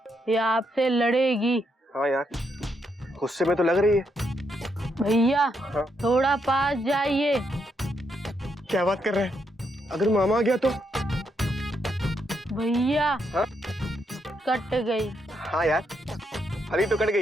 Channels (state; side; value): normal; both; correlation 0.79